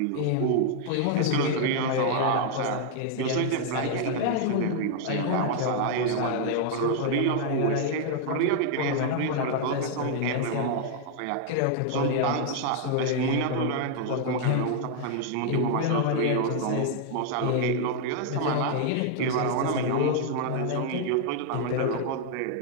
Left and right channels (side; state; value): both; different; correlation 0.00